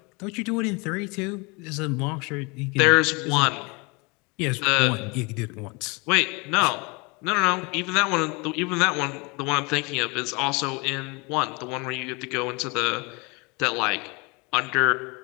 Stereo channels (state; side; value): quieter; right; 28.6 dB